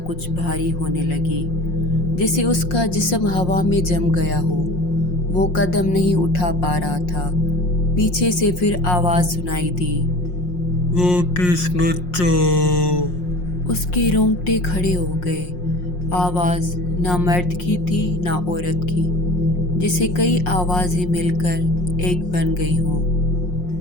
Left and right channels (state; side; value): late; right; 5.6 ms